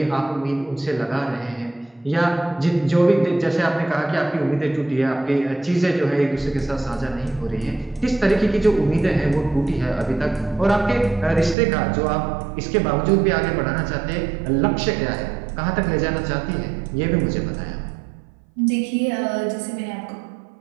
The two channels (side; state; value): left; drops out; at 11.6 s